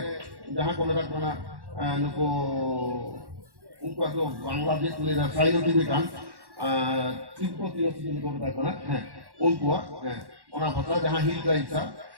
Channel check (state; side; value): late; left; 1.1 ms